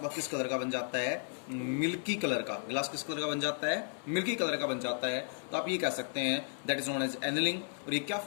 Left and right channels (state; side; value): silent; right; 55 dB below the other